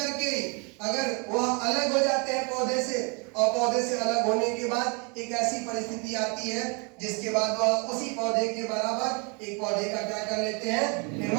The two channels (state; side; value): quieter; left; 33.2 dB